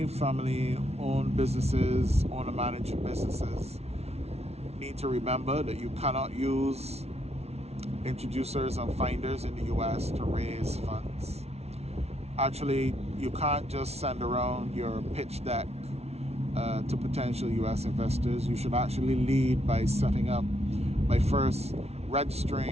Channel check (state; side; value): late; left; 0.31 ms